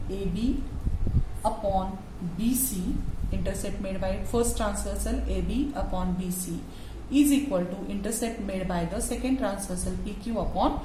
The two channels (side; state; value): both; identical; correlation 1.00